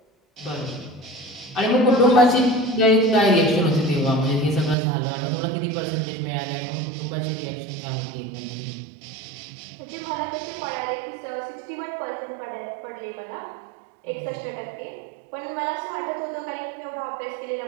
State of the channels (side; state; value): left; drops out; at 4.8 s